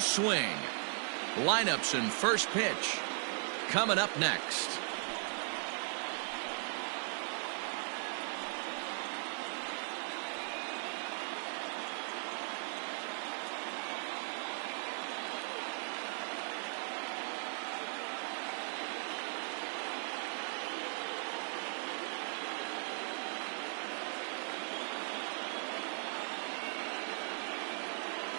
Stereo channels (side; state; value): left; silent; 52 dB below the other